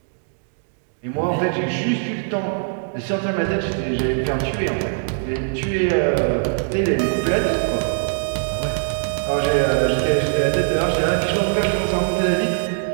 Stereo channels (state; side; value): silent; left; digital silence